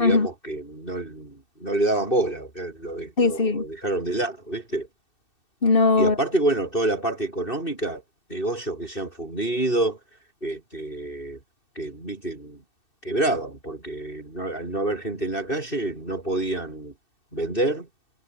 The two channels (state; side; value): late; right; 2.6 ms